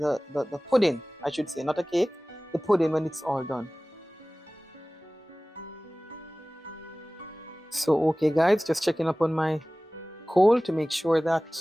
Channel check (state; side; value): normal; both; correlation 0.98